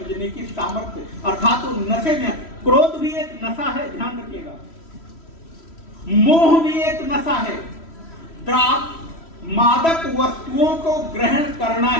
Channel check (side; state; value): right; late; 3.1 ms